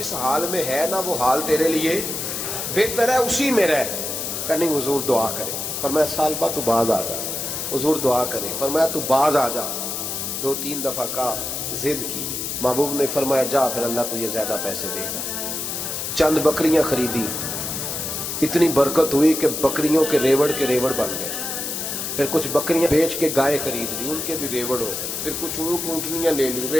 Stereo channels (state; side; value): noise; left; hiss, 4 dB below the sound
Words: حال میں ہے نا وہ حال تیرے لیے بہتر ہے، اسی میں رہ. کہ نہیں حضور دعا کرے. فرمایا سال بعد تو باز آ جا. حضور دعا کرے. فرمایا تو باز آ جا. 2-3 دفعہ کا ضد کی. محبوب نے فرمایا جا پھر اللہ تجھے زیادہ پیسے دے گا. چند بکریاں خریدی، اتنی برکت ہوئی کہ بکریوں کے ریوڑ بن گئے. پھر کچھ بکریاں بیچ کے گائے خرید لی، ان کے بھی ریوڑ ہو گئے. پھر کچھ اونٹنیاں لے لی،